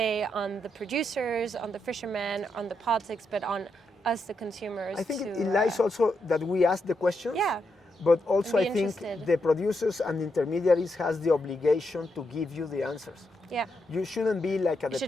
on the producers, on the fishermen, on the politics, but on us, the consumers. I think to, it lies also that we ask the questions. Yeah. But also be I think interested. the producers and intermediaries has the obligation to give you the answers. Yeah. You shouldn't be like a It should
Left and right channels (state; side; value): normal; both; correlation 0.82